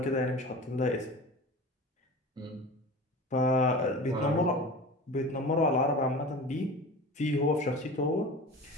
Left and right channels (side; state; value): both; normal; correlation 0.35